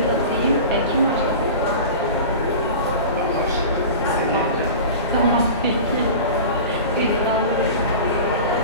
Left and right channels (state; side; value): inverted; both; correlation -0.34